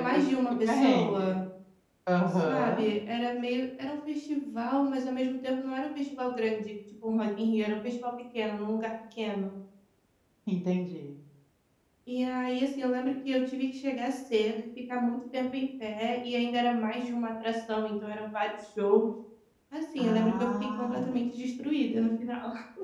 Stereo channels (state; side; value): identical; both; correlation 1.00